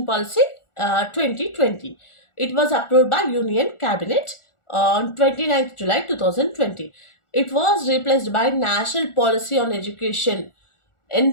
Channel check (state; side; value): late; right; 1.4 ms